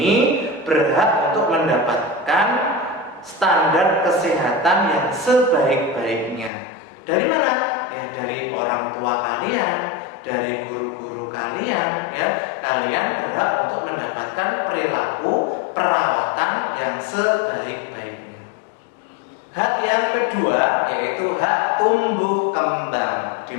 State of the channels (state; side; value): drops out; right; at 6.5 s